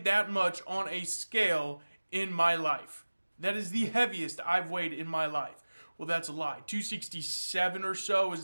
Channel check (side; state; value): both; inverted; correlation -1.00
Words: that much on a scale in my life. That is the heaviest I've weighed in my life. Well, that's a lie. 267 or so is